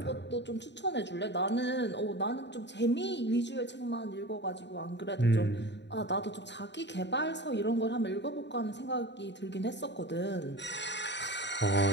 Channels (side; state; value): right; late; 0.51 ms